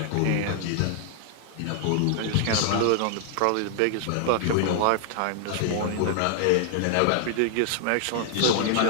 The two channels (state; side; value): different; both; correlation -0.01